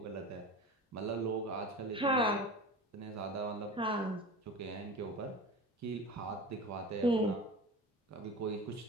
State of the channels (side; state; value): both; normal; correlation 0.33